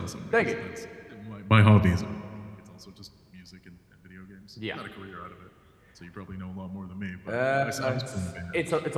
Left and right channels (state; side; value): identical; both; correlation 1.00